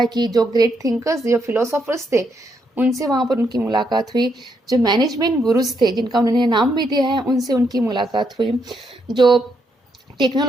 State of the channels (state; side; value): normal; both; correlation 0.77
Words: कि जो ग्रेट थिंकर्स, जो फिलोसोफर्स थे, उनसे वहाँ पर उनकी मुलाकात हुई. जो मैनेजमेंट गुरुज थे, जिनका उन्होंने नाम भी दिया है, उनसे उनकी मुलाकात हुई. जो